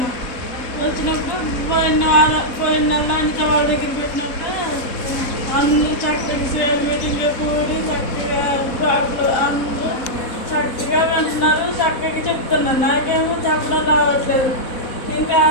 వచ్చినప్పుడు పోయిన నెల అనిత వాళ్ళ దగ్గర పెట్టినప్పుడు అందరూ చక్కగా సీఎం మీటింగ్లో కూడి చక్కగా అందరూ చక్కగా వింటున్నారు, చక్కగా చెప్తున్నారు. నాకేమో చెప్పడం రావట్లేదు. ఇంకా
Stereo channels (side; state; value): right; late; 4.1 ms